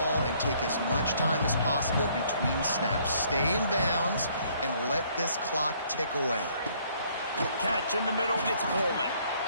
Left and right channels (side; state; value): both; inverted; correlation -0.63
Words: and take as much time as possible between snaps. Stay in bounds and let this clock tick away. Catch in the middle, it's Coleman.